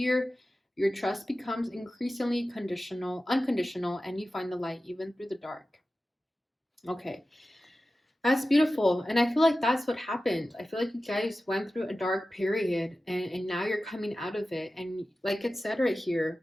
your trust becomes increasingly unconditional, and you find the light even through the dark. Okay, that's beautiful. And I feel like that's what happened. I feel like you guys went through a dark period and now you're coming out of it. And like it said right here,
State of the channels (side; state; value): both; normal; correlation 0.94